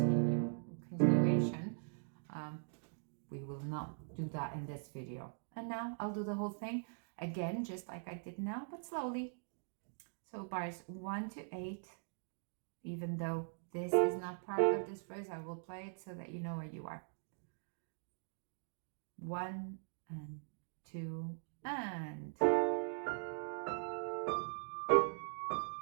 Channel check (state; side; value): silent; left; digital silence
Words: We will not do that in this video. And now I'll do the whole thing again, just like I did now, but slowly. So bars 1 to 8, even though this is not part of this phrase, I will play it so that you know where you are. 1 and 2 and...